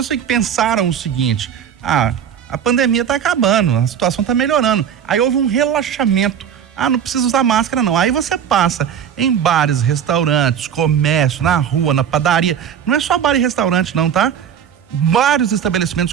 assim, que pensaram o seguinte: a pandemia tá acabando, a situação tá melhorando. Aí houve um relaxamento. Não precisa usar máscara não. Aí você passa em bares, restaurantes, comércio, na rua, na padaria. Não é só bar e restaurante não, tá? Vários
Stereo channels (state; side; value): quieter; left; 8.5 dB